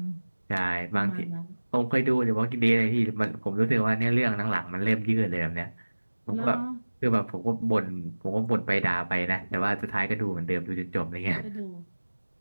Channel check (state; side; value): inverted; both; correlation -1.00